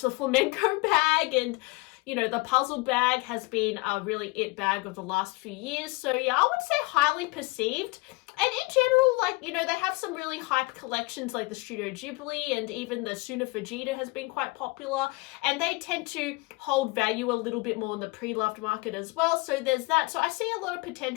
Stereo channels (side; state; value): right; quieter; 25.2 dB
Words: flamenco bag, and the puzzle bag has been a really it bag of the last few years. So yeah, I would say highly perceived. And in general, they have some really hype collections like the Studio Ghibli, and even the Suna Fujita has been quite popular. And they tend to hold value a little bit more in the pre-loved market as well. So there's that. So I see a lot of